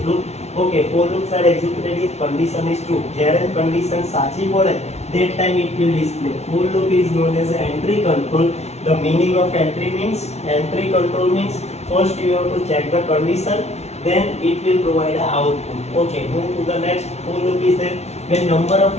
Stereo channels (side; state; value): right; late; 0.31 ms